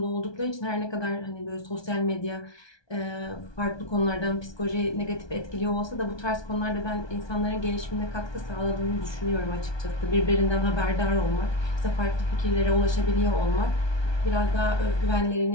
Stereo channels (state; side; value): late; right; 1.2 ms